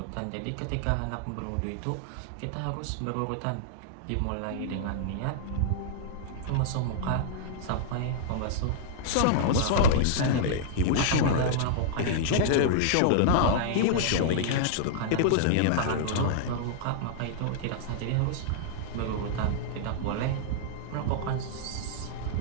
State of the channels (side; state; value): both; different; correlation -0.01